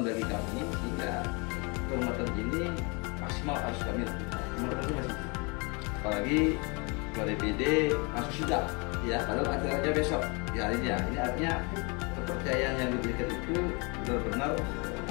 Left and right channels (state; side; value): quieter; right; 30.6 dB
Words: bagi kami, sehingga kehormatan ini maksimal harus kami lakukan. Kehormatan ini masih, apalagi ketua DPD masuk sidang ya, padahal acaranya besok ya ini ya. Ini artinya kepercayaan yang diberikan itu benar-benar